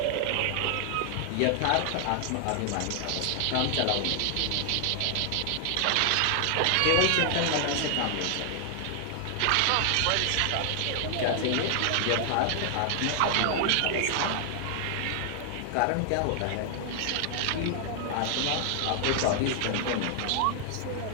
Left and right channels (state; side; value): different; both; correlation 0.00